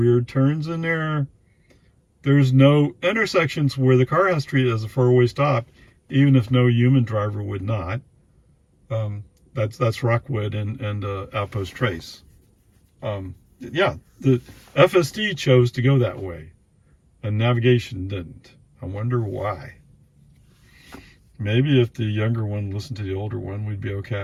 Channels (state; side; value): identical; both; correlation 1.00